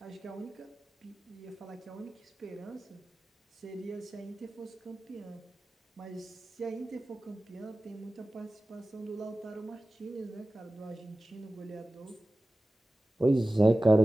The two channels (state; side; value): normal; both; correlation 0.96